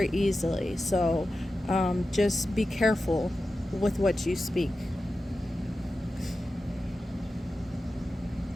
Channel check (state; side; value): normal; both; correlation 0.93